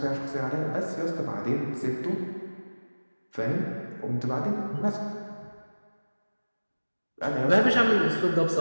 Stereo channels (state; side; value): inverted; both; correlation -1.00